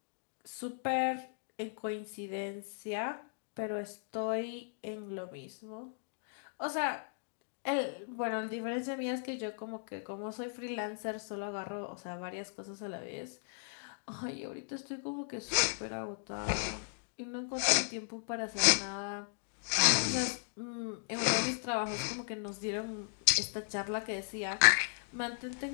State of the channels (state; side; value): silent; right; digital silence